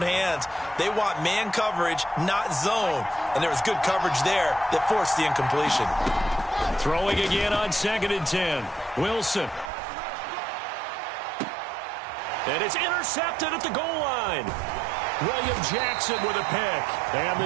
hands. They want man coverage, not zone. And there was good coverage there that forced the incompletion. Throwing again on 2nd and 10. Wilson. And it's intercepted at the goal line. William Jackson with a pick. And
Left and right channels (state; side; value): drops out; left; at 9.7 s